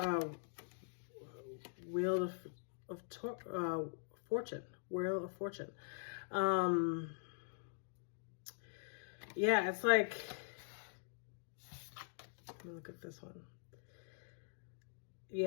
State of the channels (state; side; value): silent; right; digital silence